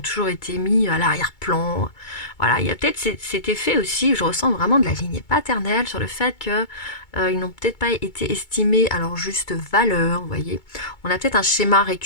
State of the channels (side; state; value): right; late; 2.2 ms